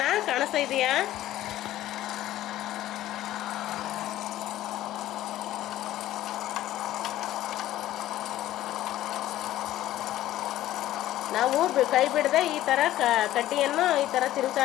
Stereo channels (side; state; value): right; quieter; 14.1 dB